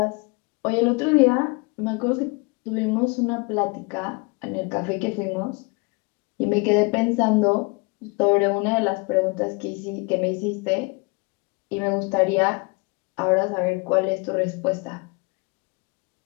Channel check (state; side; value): quieter; right; 29.5 dB